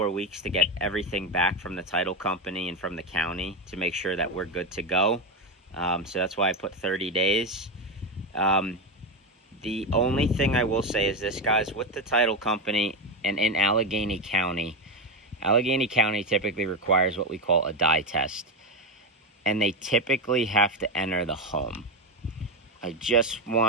weeks to get everything back from the title company and from the county to make sure that we're good to go. So that's why I put 30 days. The only thing I will say is this, guys, with the title company and in Allegheny County typically requires what we call a dye test. And they typically have to enter the home. I just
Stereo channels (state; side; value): normal; both; correlation 0.12